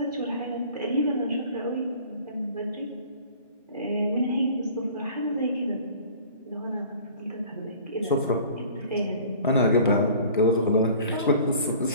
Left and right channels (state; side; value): inverted; both; correlation -0.47